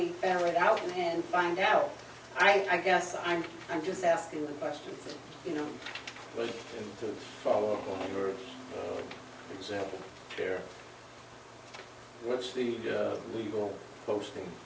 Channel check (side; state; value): both; identical; correlation 1.00